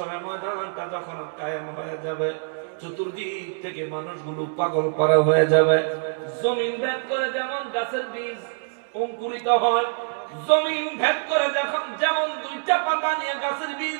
ময়দানটা যখন কায়েম হয়ে যাবে, চতুর্দিক থেকে মানুষগুলো পাগল পারা হয়ে যাবে। জমিন ভেদ করে যেমন গাছের বীজ অঙ্কুরিত হয়, জমিন ভেদ করে যেমন দুইটা পাতা নিয়ে গাছের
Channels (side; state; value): left; silent; digital silence